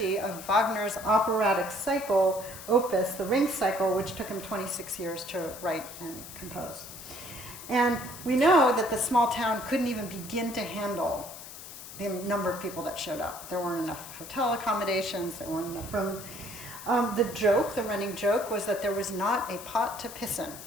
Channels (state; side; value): noise; left; hiss, 13 dB below the sound